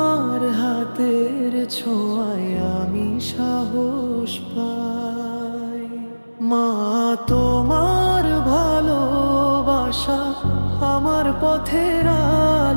হাতের ছোঁয়ায় আমি সাহস পাই। মা, তোমার ভালোবাসা আমার পথের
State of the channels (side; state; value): both; inverted; correlation -1.00